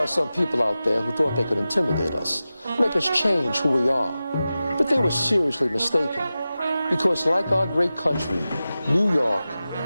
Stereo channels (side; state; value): both; inverted; correlation -0.94